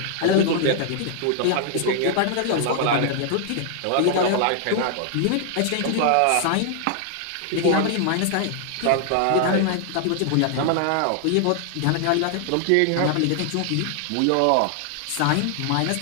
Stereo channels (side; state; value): both; different; correlation 0.00